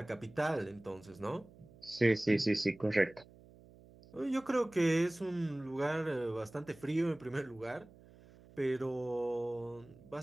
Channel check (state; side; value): noise; right; hum, 23 dB below the sound